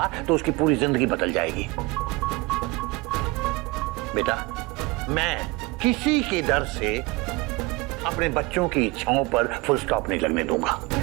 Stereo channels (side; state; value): left; quieter; 23.7 dB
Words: तो उसकी पूरी जिंदगी बदल जाएगी। बेटा, मैं किसी के डर से अपने बच्चों की इच्छाओं पर फुल स्टॉप नहीं लगने दूंगा।